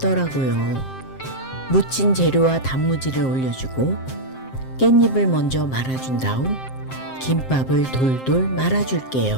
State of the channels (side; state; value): right; late; 7.6 ms